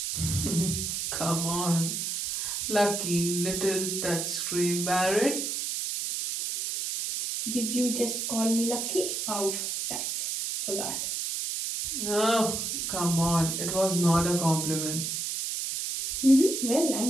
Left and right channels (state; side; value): noise; right; hiss, 2 dB below the sound